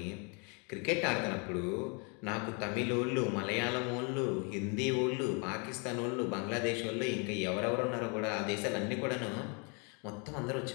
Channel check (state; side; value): quieter; right; 34.5 dB